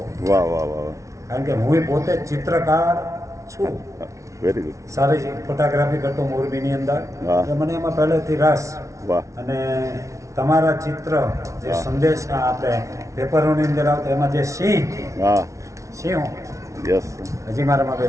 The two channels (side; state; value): left; late; 0.15 ms